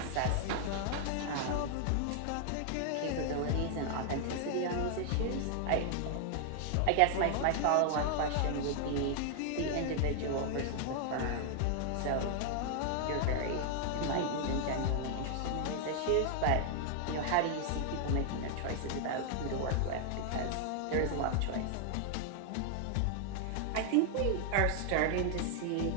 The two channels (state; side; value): different; both; correlation 0.00